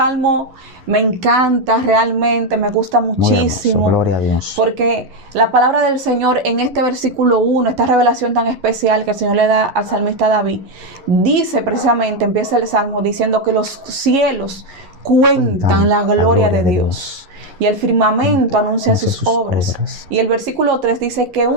me encanta realmente, me gusta Muy muchísimo. hermoso, gloria a Dios. Porque la palabra del Señor en este versículo 1, esta revelación tan especial que el Señor le da al salmista David, dice precisamente, empieza el salmo diciendo que los cielos cuentan la gloria de Dios. Y el firmamento anuncia sus obras. Y el versículo 3 dice que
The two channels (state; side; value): late; left; 11 ms